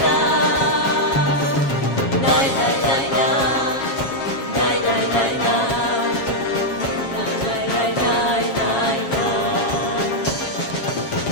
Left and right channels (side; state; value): right; late; 7.3 ms